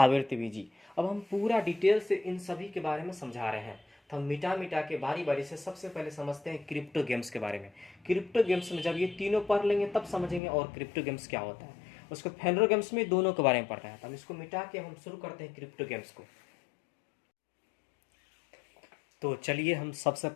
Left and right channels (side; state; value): right; drops out; at 10.4 s